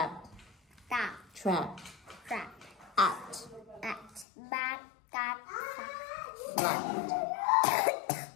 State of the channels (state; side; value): drops out; right; at 4.2 s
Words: Tap. Trap. Trap. At. Bat, tat, Flat.